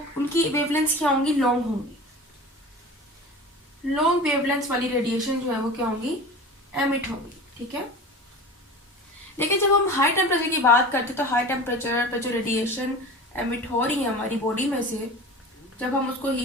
उनकी वेवलेंथ क्या होंगी, लॉन्ग होंगी। लॉन्ग वेवलेंथ वाली रेडिएशन जो है वो क्या होंगी, एमिट होंगी। ठीक है, लेकिन जब हम हाई टेम्परेचर की बात करते हैं तो हाई टेम्परेचर पर जो रेडिएशन एमिट हो रही है हमारी बॉडी में से, जब हम उसको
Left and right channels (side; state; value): both; normal; correlation 0.35